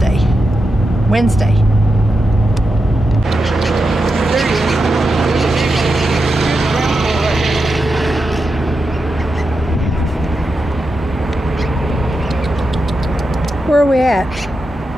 Wednesday. Where are we at?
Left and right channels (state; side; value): normal; both; correlation 0.88